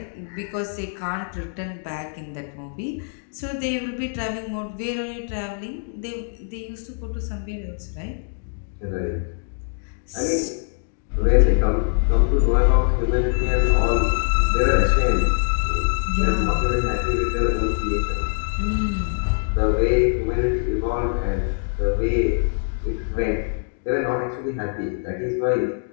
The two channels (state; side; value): silent; right; digital silence